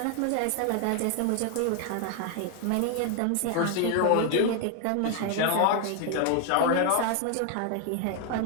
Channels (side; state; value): both; different; correlation 0.00